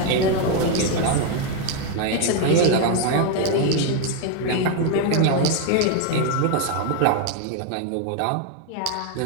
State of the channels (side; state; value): both; different; correlation 0.01